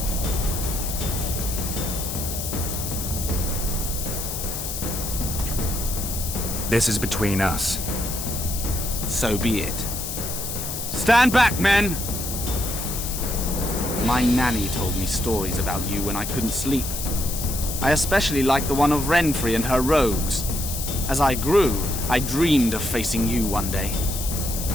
This is between us. So be it. Stand back, men! My nanny told me stories about you when I couldn't sleep. I especially liked the one of Renfrey and her rogues. As I grew, I dreamed of facing you one day.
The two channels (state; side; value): noise; left; hiss, 5 dB below the sound